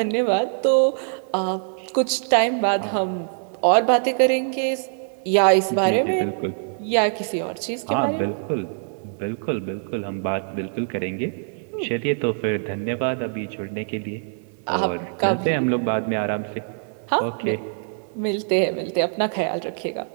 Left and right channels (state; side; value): silent; left; 62 dB below the other